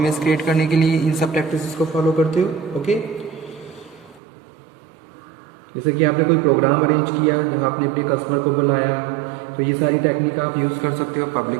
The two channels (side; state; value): left; drops out; at 4.2 s